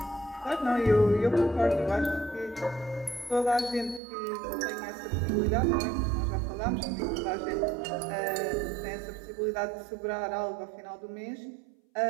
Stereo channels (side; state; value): left; drops out; at 4.0 s